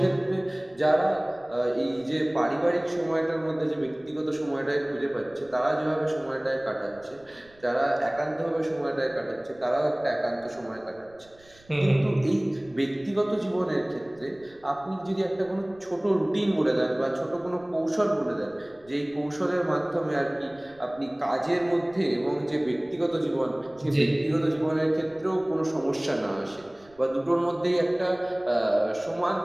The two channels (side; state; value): right; noise; rumble, 28 dB below the sound